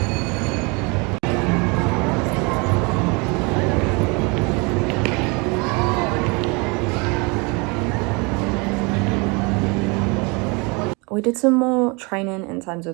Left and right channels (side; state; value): left; quieter; 29.1 dB